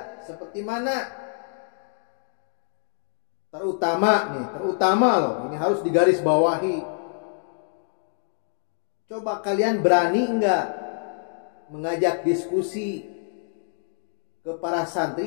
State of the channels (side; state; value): right; silent; digital silence